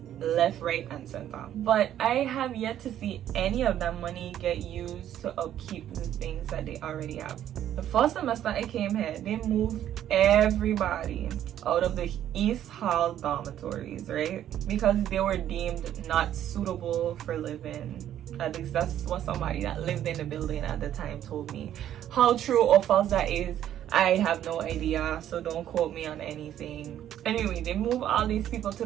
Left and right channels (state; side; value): quieter; left; 11.2 dB